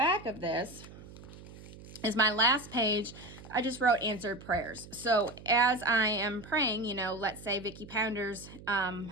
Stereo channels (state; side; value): noise; right; hum, 17 dB below the sound